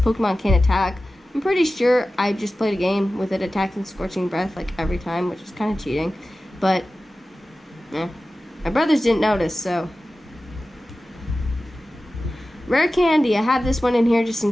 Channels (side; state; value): both; normal; correlation 0.95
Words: can't attack, I'm pretty sure I just played a game with it attacking Scorching Breath like every time, which is kind of cheating. But, my brothers didn't notice, so. Rare Candy, I have this one in here just in